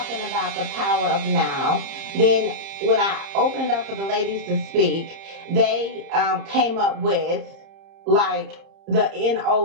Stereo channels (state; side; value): late; left; 30 ms